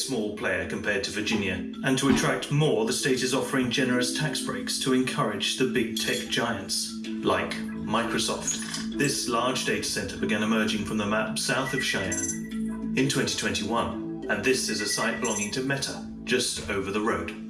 player compared to Virginia, and to attract more, the state is offering generous tax breaks to encourage the big tech giants, like Microsoft. This large data center began emerging from the map south of Cheyenne in 2021, and this is a site belonging to Meta, just over the road.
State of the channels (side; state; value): both; identical; correlation 1.00